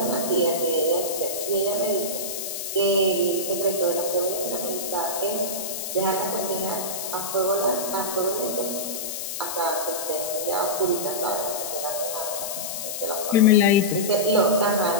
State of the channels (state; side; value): noise; left; hiss, 5 dB below the sound